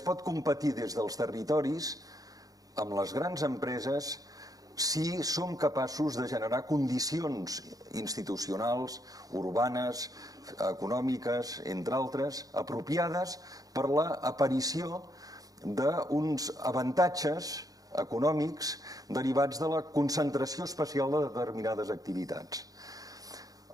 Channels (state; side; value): late; left; 0.17 ms